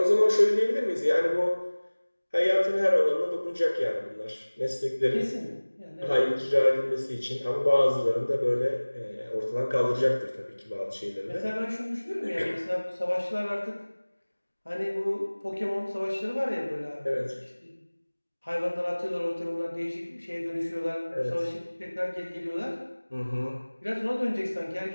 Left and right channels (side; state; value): both; inverted; correlation -1.00